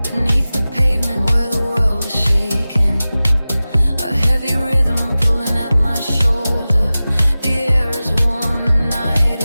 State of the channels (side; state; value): both; inverted; correlation -0.96